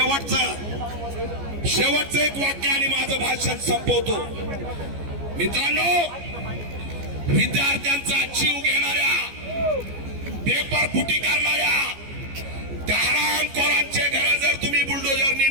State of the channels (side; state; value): left; late; 14 ms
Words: शेवटचं एक वाक्य आणि माझं भाषण संपवतो. मित्रांनो, विद्यार्थ्यांचा जीव घेणाऱ्या, पेपर फुटी करणाऱ्या त्या हरामखोरांचे घर जर तुम्ही बुलडोजरनी